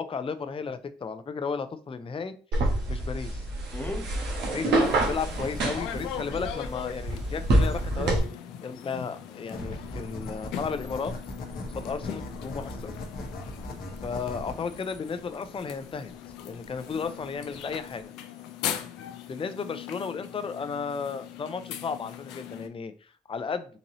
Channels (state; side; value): normal; both; correlation 0.62